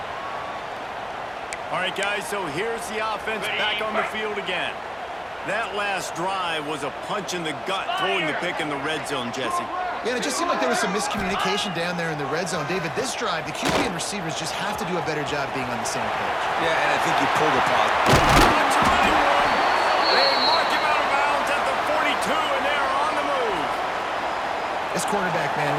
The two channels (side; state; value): both; identical; correlation 1.00